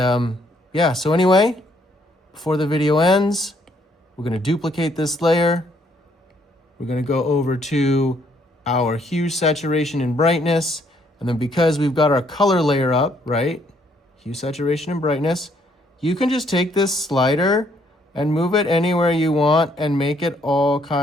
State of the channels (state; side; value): normal; both; correlation 0.68